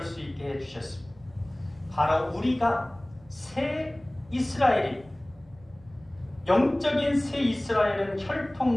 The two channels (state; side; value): noise; right; rumble, 26 dB below the sound